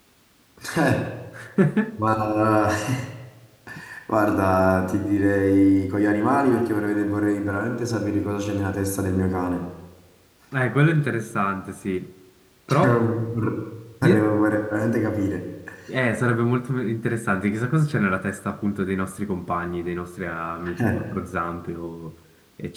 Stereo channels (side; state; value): both; identical; correlation 1.00